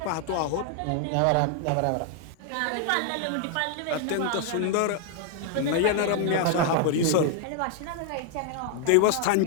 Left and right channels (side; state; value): both; different; correlation 0.00